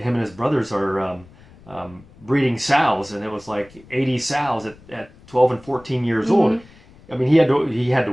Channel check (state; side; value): noise; left; rumble, 25 dB below the sound